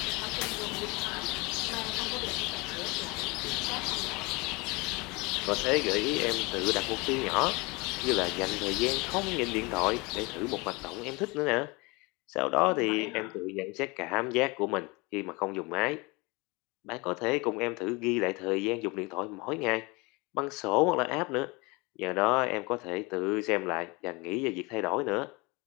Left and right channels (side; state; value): right; quieter; 26.2 dB